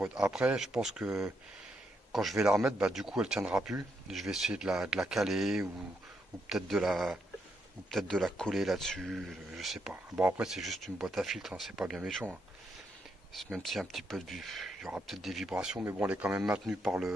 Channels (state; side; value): normal; both; correlation 0.79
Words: Après, je pense que quand je vais la remettre, bah, du coup, elle tiendra plus. Je vais essayer de la caler ou peut-être de la coller là-dessus. Je sais pas. Bon, après, c'est juste une boîte à filtre, hein, c'est pas bien méchant. Hein. Même s'il y a un petit peu il y aura peut-être des vibrations, mais bon, elle est quand même maintenue par